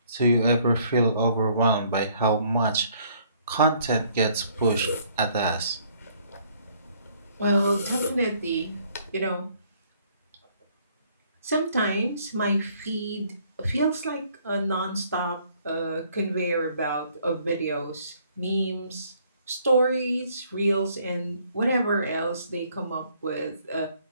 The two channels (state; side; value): inverted; both; correlation -0.63